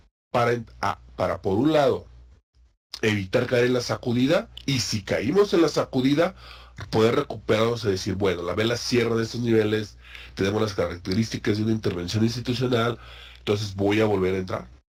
para por un lado, evitar caer en la sacudida, y si caímos en la sacudida, poder recuperarnos y decir, bueno, la vela cierra en estos niveles, tenemos las características de una intervención institucional, entonces voy a volver a entrar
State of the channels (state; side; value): identical; both; correlation 1.00